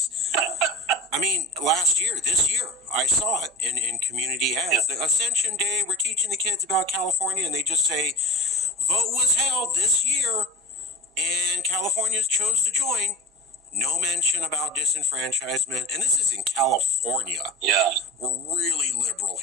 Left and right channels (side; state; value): both; normal; correlation 0.35